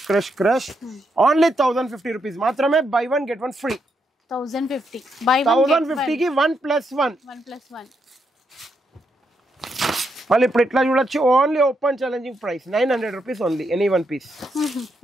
only 1050 rupees మాత్రమే. Buy 1 get 1 free. 1050 కి 1+1. 1+1. మళ్ళీ ఇప్పుడు ఇట్లా చూడొచ్చు, only open challenging price 900 rupees only. Any one piece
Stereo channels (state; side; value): normal; both; correlation 0.80